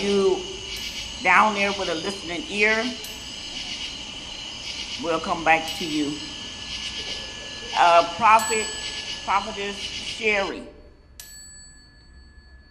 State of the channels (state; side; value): identical; both; correlation 1.00